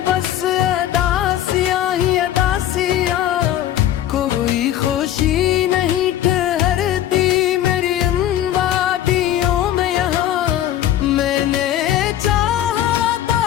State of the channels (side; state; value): right; quieter; 12.0 dB